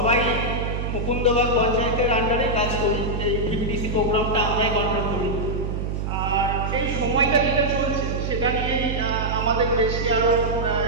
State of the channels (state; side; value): noise; right; hum, 2 dB below the sound